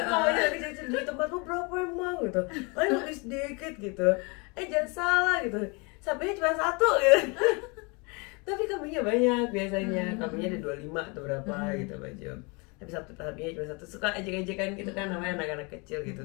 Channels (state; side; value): quieter; right; 30.5 dB